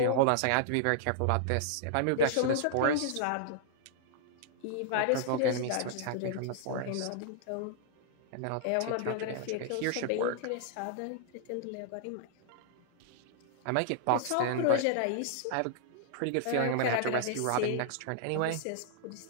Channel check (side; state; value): both; different; correlation -0.01